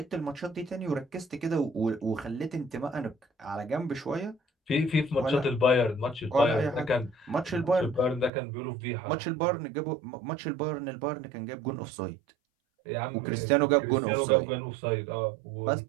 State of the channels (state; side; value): drops out; left; at 8.3 s